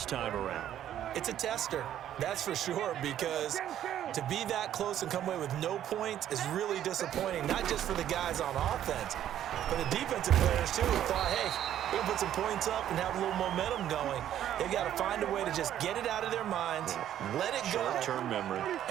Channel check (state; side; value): quieter; left; 11.2 dB